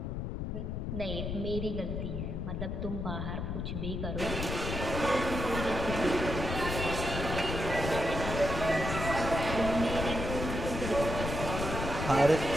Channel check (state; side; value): noise; left; rumble, 3 dB below the sound